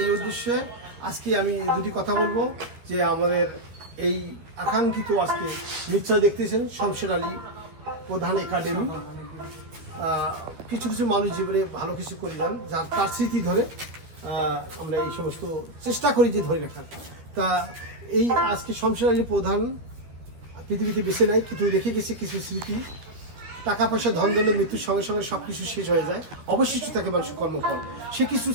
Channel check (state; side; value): late; left; 12 ms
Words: এই উদ্দেশ্যে আজকে আমি দুটি কথা বলবো। যে আমাদের এই আকাঙ্ক্ষিত আজকে নিশ্চয় দেখতেছেন শমশের আলী প্রধান একাডেমি, কিছু কিছু মানুষ জীবনে ভালো কিছু করে যান, যার তার স্মৃতি ধরে আমরা এই সমস্ত চেষ্টা করি যে ধরে রাখার। তা এই আজকে শমশের আলী প্রধান পৃথিবীতে বেছে নেয়, কিন্তু রেখে গেছে কিছু স্মৃতি। টাকা পয়সা ধন দৌলত মৃত্যুর সঙ্গে সঙ্গে সব কিছু শেষ হয়ে যায়, অবশিষ্ট থাকে মানুষের কর্মফল। সে কিছু